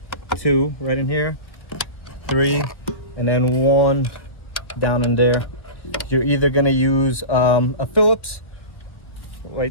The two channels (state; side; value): late; right; 1.4 ms